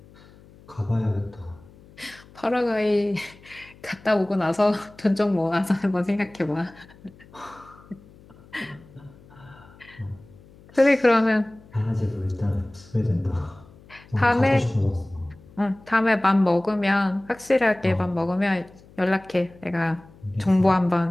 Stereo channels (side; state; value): left; noise; hum, 24 dB below the sound